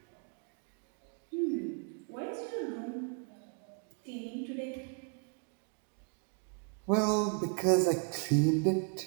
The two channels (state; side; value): quieter; left; 39.2 dB